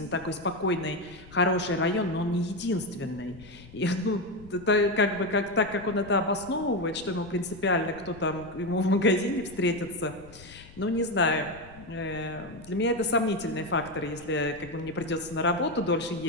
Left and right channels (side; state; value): left; noise; rumble, 20 dB below the sound